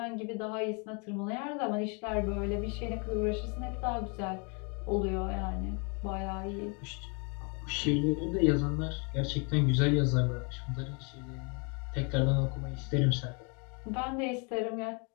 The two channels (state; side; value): quieter; right; 34.7 dB